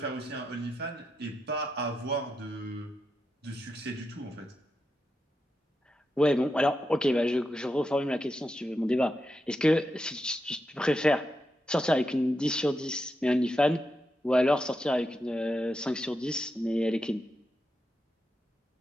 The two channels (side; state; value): both; normal; correlation 0.86